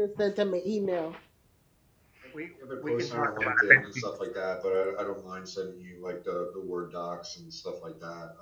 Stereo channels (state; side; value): identical; both; correlation 1.00